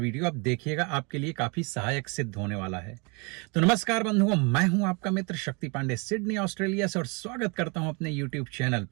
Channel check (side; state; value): left; quieter; 31.5 dB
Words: आप देखिएगा, आपके लिए काफी सहायक सिद्ध होने वाला है। तो नमस्कार बंधुओं, मैं हूं आपका मित्र शक्ति पांडे, सिडनी ऑस्ट्रेलिया से, और स्वागत करता हूं अपने यूट्यूब चैनल